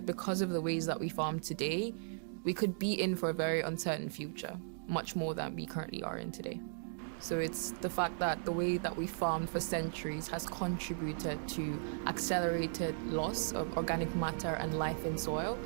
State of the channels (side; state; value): left; silent; digital silence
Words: because of the ways that we farm today, we could be in for a very uncertain future, much more than we currently are in today. So it's the fact that the way that we farmed for centuries has contributed to accelerated loss of organic matter and life in soil,